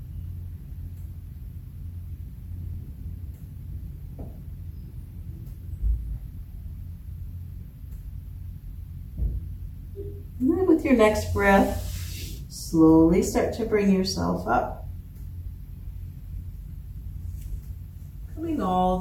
And then with your next breath, slowly start to bring yourself up. Coming all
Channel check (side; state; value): both; identical; correlation 1.00